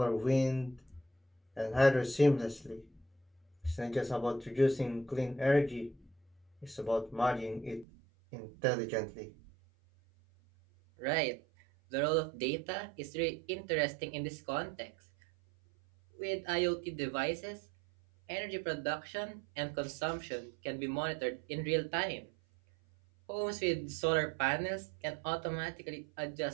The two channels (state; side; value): drops out; left; at 7.9 s